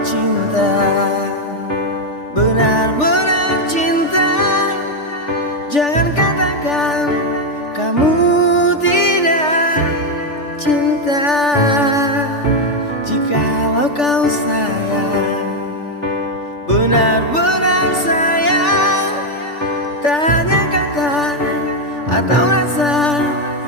cinta, benar-benar cinta, jangan katakan kamu tidak cinta. Jikalau kau sayang, benar-benar sayang, tak hanya kata atau rasa,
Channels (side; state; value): right; late; 3.4 ms